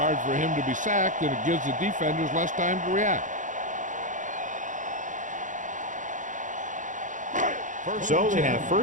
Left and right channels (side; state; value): left; late; 0.37 ms